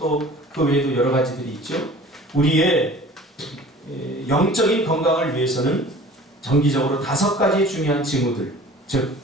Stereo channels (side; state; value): both; normal; correlation 0.45